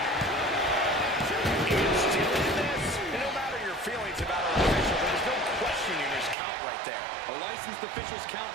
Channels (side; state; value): left; drops out; at 6.4 s